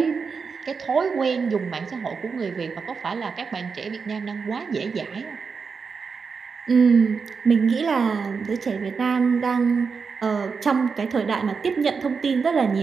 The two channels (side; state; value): left; quieter; 5.3 dB